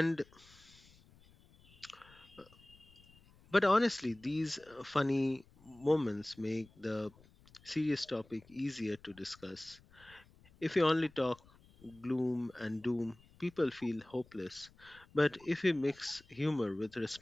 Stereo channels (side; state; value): left; noise; rumble, 26 dB below the sound